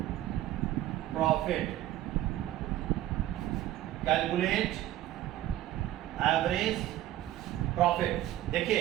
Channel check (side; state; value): left; quieter; 14.0 dB